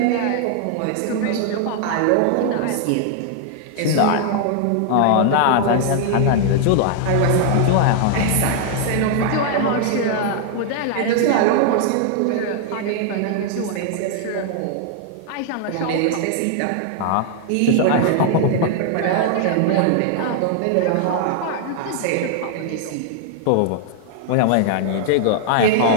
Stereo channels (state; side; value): different; both; correlation 0.00